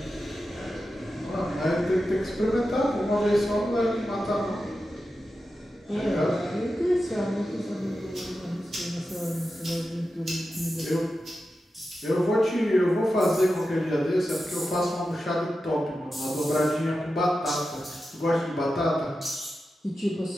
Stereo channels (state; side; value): normal; both; correlation 0.91